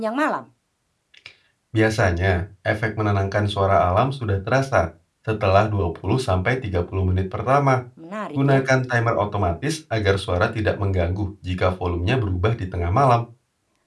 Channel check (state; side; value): identical; both; correlation 1.00